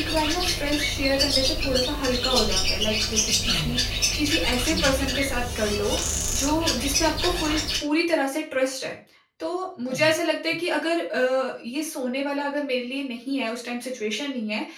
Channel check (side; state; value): both; identical; correlation 1.00